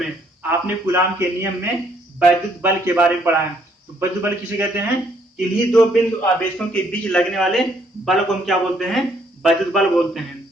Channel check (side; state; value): both; normal; correlation 0.67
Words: आपने कूलाम के नियम में वैद्युत बल के बारे में पढ़ा है। तो वैद्युत बल किसे कहते हैं, इन्हीं दो बिंदु आवेशों के बीच लगने वाले बल को हम क्या बोलते हैं, वैद्युत बल बोलते हैं,